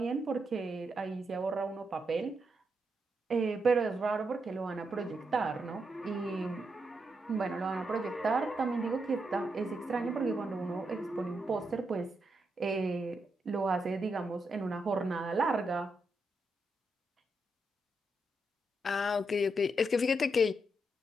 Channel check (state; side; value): normal; both; correlation 0.82